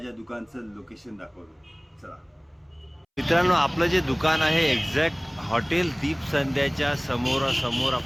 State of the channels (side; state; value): both; identical; correlation 1.00